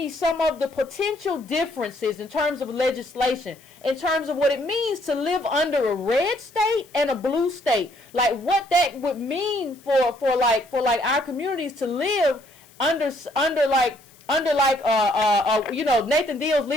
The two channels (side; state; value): left; noise; hiss, 27 dB below the sound